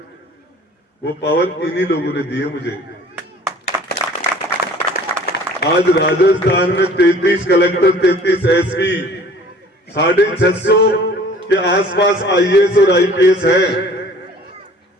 वो पावर इन्हीं लोगों ने दी है मुझे। आज राजस्थान में 33 कलेक्टर, 33 एसपी, 650 के आसपास आईएएस और आईपीएस है।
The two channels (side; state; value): both; normal; correlation 0.50